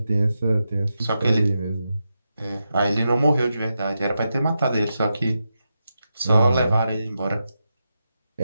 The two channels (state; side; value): inverted; both; correlation -0.88